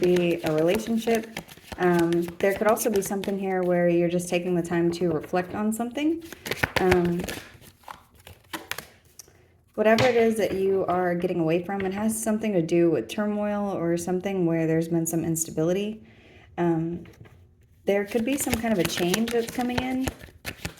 be a relationship. There could also be something here where you're just taking the time to reflect on something. Whatever it is that you are getting away from, it has something to do with turmoil or something where there's been some instability. There could be some kind of a change that's coming in.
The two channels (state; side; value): identical; both; correlation 1.00